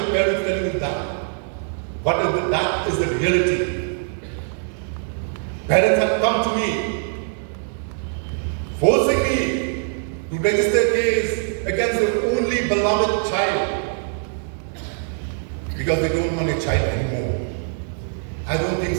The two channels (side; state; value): left; silent; 64 dB below the other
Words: parents telling you that? But that is the reality. Parents have come to me, forcing me to register a case against their only beloved child because they don't want a child anymore. I don't think